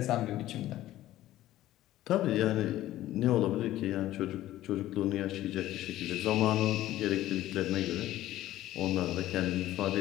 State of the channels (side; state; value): right; quieter; 14.6 dB